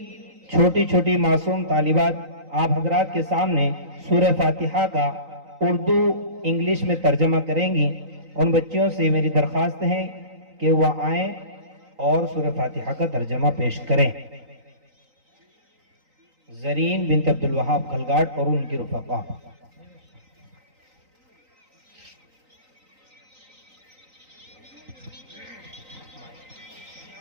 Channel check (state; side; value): late; left; 3.9 ms